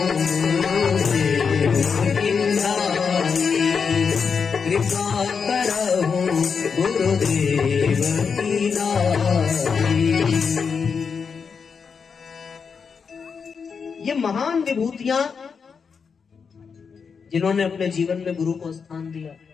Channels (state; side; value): quieter; right; 5.9 dB